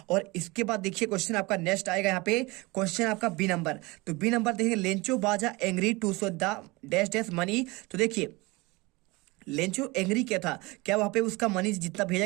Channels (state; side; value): quieter; left; 23.7 dB